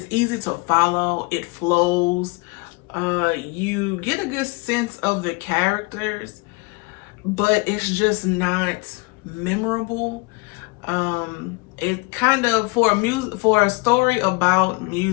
easy to follow. It flows. You get a good sense of the characters, but it's just not memorable. It kind of, for a story about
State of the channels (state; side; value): quieter; right; 26.6 dB